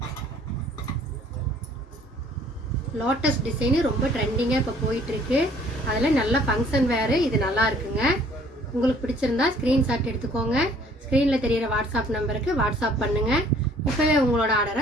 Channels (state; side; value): normal; both; correlation 0.57